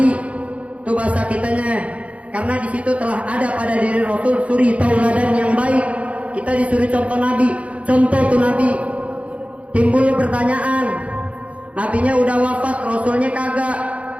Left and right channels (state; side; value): late; left; 0.064 ms